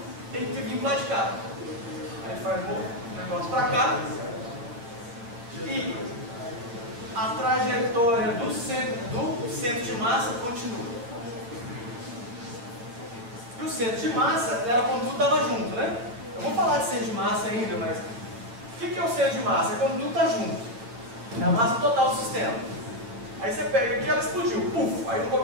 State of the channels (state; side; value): late; left; 8.6 ms